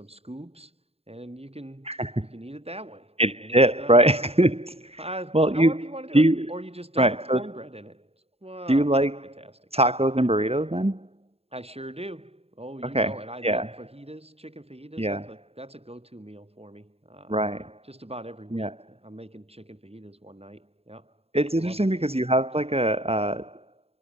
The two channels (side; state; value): left; late; 0.29 ms